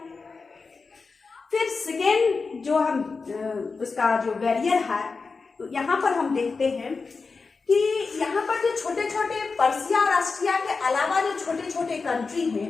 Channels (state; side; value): quieter; right; 4.5 dB